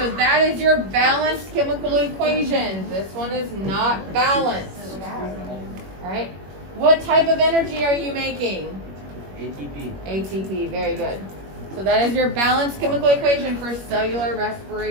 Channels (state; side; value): late; left; 21 ms